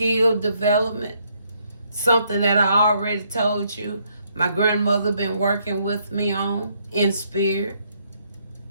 development, something that I already told you my grandmother been working with me on in spirit,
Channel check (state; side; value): inverted; both; correlation -0.71